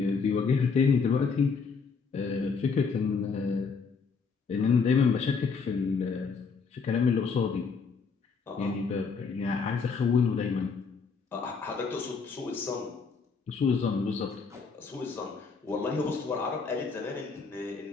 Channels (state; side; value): quieter; right; 5.2 dB